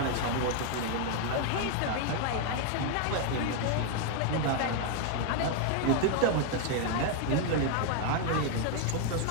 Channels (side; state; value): both; different; correlation 0.00